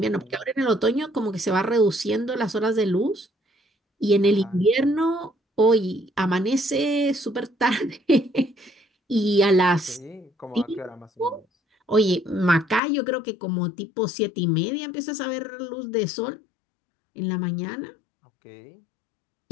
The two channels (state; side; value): drops out; right; at 12.8 s